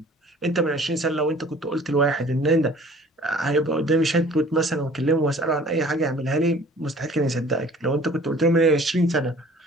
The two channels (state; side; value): normal; both; correlation 0.50